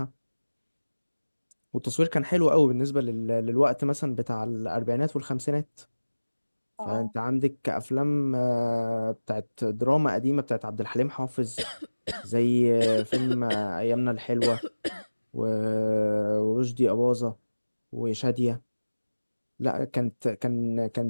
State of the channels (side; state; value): both; inverted; correlation -1.00